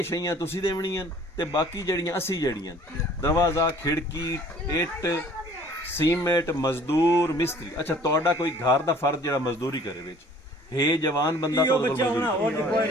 ਸ਼ਈਆਂ ਤੁਸੀਂ ਦੇਵਣੀਆਂ ਤੇ ਬਾਕੀ ਜਿਹੜੀਆਂ ਅਸੀਂ ਜਿਹੜੀਆਂ ਦਰਵਾਜ਼ਾ ਖਿੜਕੀ ਇੱਟ ਸੀਮੈਂਟ ਮਜ਼ਦੂਰ ਮਿਸਤਰੀ। ਅੱਛਾ ਤੁਹਾਡਾ ਕੋਈ ਘਰ ਦਾ ਫਰਜ਼ ਜਿਹੜਾ ਮਜ਼ਦੂਰੀ ਕਰੇ ਵਿੱਚ ਹੈ ਜਵਾਨ ਬੰਦਾ ਉਹ ਤੁਹਾਡੇ ਬੱਚਾ ਕੋਲ ਹੋਣਾ ਮਜ਼ਦੂਰੀ ਉਹ ਕੋਈ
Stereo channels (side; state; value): both; normal; correlation 0.52